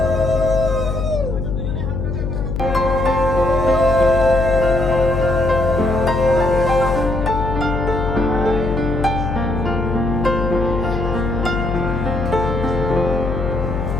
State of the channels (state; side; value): noise; left; hum, 3 dB below the sound